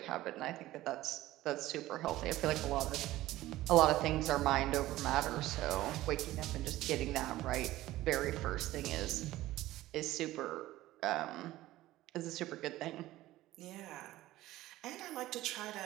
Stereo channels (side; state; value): left; quieter; 16.1 dB